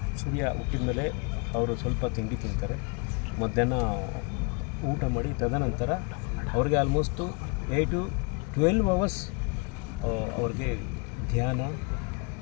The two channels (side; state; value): right; quieter; 32.6 dB